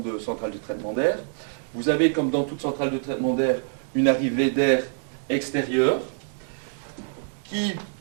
centrale de traitement d'air. Vous avez, comme dans toute centrale de traitement d'air, une arrivée d'air extérieur qui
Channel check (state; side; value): silent; left; 61 dB below the other